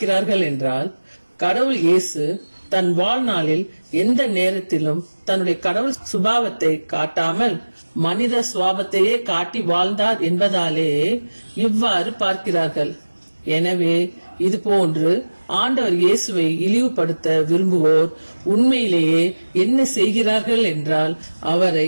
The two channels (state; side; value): inverted; both; correlation -1.00